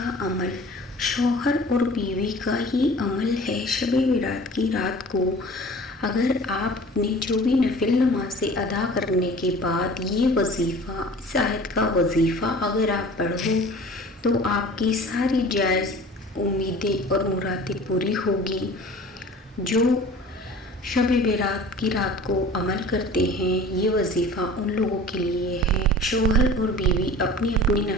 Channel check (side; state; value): both; normal; correlation 0.44